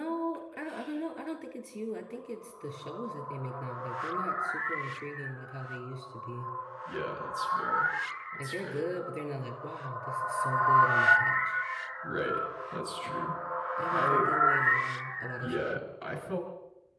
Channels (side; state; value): both; identical; correlation 1.00